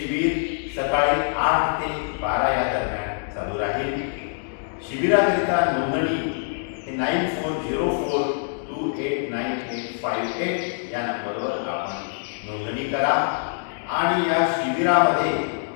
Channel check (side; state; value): right; silent; digital silence